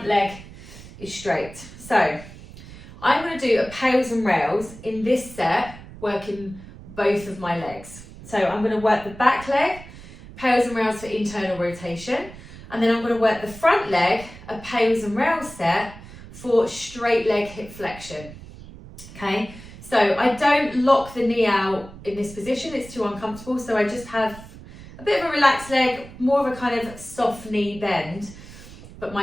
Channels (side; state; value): right; noise; rumble, 17 dB below the sound